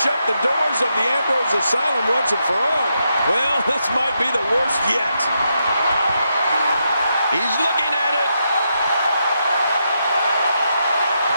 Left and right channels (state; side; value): inverted; both; correlation -0.82